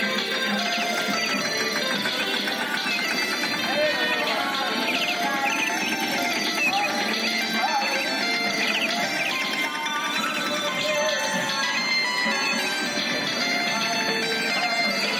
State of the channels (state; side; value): identical; both; correlation 1.00